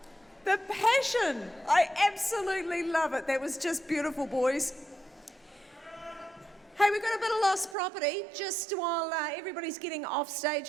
The passion. I absolutely love it. That was just beautiful, boys. Hey, we've got a bit of lost property just while everybody's getting off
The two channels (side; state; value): left; drops out; at 7.8 s